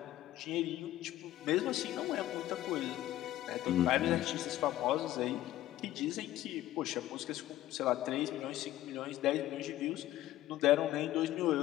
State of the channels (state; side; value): quieter; right; 14.4 dB